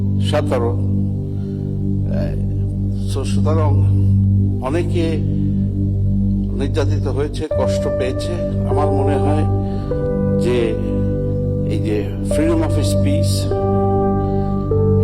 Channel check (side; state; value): both; identical; correlation 1.00